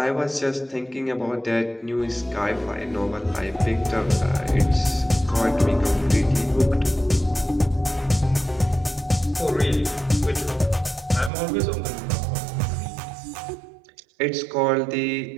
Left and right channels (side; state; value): left; drops out; at 11.3 s